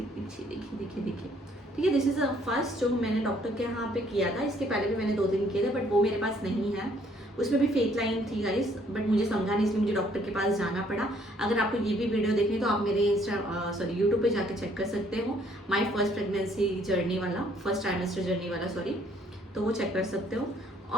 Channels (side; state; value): both; normal; correlation 0.64